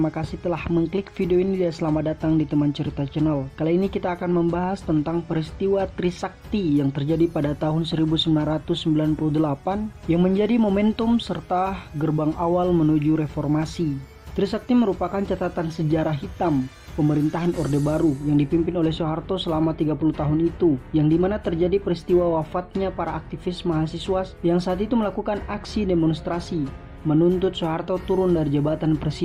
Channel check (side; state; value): both; identical; correlation 1.00